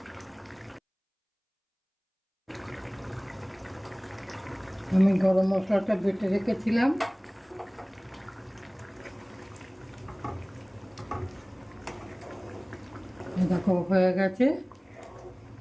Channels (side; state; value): both; identical; correlation 1.00